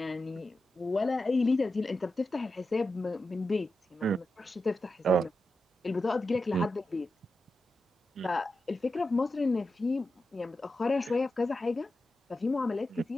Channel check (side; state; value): both; normal; correlation 0.90